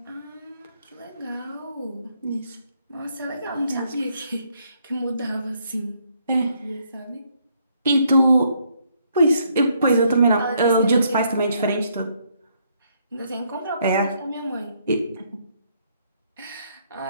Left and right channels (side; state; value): both; inverted; correlation -0.71